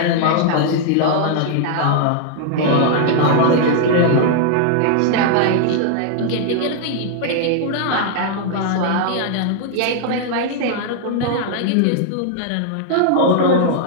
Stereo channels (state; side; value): different; both; correlation -0.01